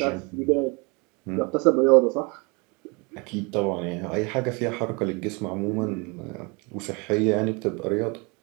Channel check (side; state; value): left; quieter; 29.7 dB